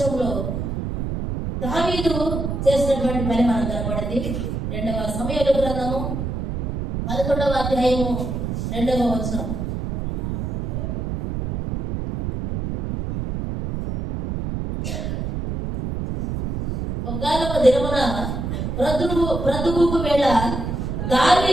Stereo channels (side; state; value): right; noise; rumble, 3 dB below the sound